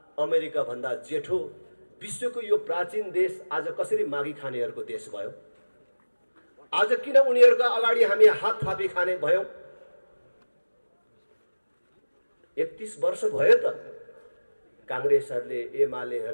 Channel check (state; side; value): inverted; both; correlation -1.00